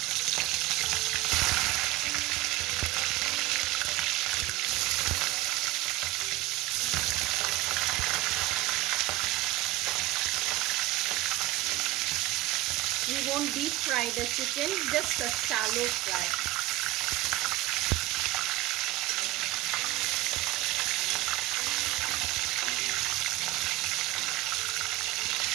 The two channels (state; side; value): quieter; left; 17.7 dB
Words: We won't deep fry the chicken, just a shallow fry.